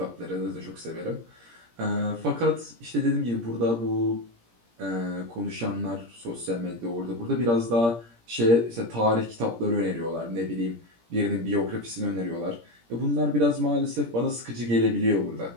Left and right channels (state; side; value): late; left; 17 ms